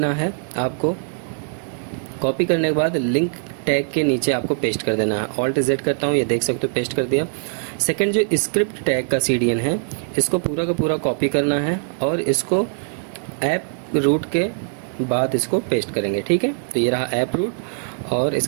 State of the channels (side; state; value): left; silent; 56 dB below the other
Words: है आपको। कॉपी करने के बाद लिंक टैग के नीचे आपको पेस्ट कर देना है। Alt+Z करता हूँ, ये देख सकते हो पेस्ट कर दिया। सेकंड, जो स्क्रिप्ट टैग का CDN है, इसको पूरा का पूरा कॉपी करना है और इसको ऐप रूट के बाद इसको पेस्ट करेंगे। ठीक है, तो ये रहा ऐप रूट और